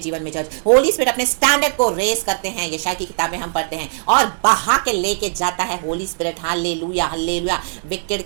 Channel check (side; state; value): left; silent; digital silence